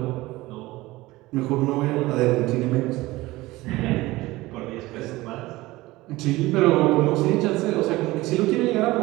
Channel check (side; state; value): left; quieter; 19.2 dB